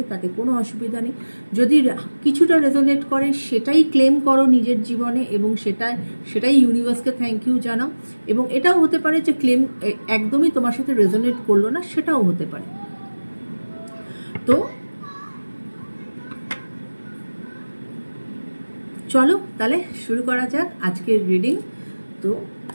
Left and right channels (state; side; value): inverted; both; correlation -1.00